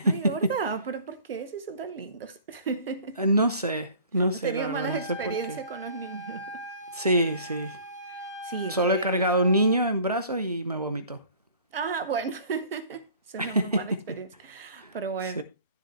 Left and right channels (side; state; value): both; inverted; correlation -0.48